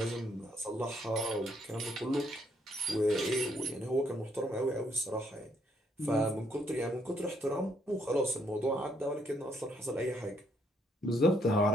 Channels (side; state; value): both; normal; correlation 0.72